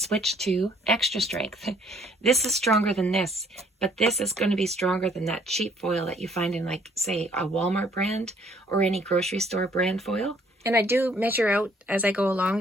to extra strength. This is stronger than this, but this is going to be stronger than that cheap foil that you find in, like, say, a Walmart brand or any grocery store brand foil. And I do measure out as I go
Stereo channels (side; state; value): both; normal; correlation 0.62